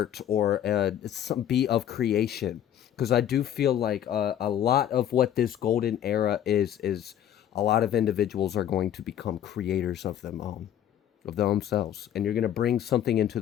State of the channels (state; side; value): quieter; right; 10.5 dB